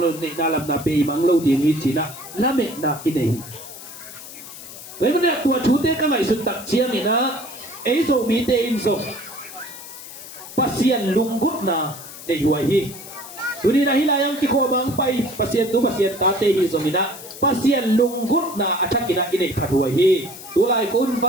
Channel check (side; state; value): left; noise; hiss, 14 dB below the sound